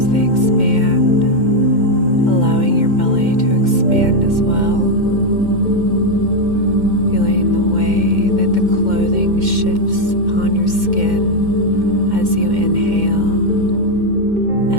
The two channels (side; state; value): left; late; 2.1 ms